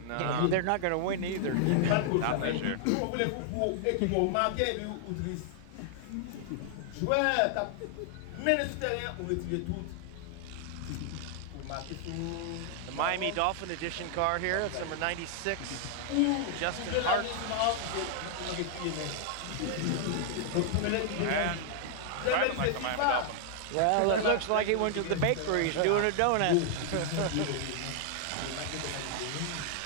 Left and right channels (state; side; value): different; both; correlation 0.00